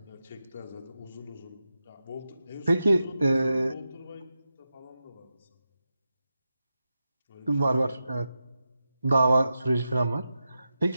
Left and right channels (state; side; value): inverted; both; correlation -0.90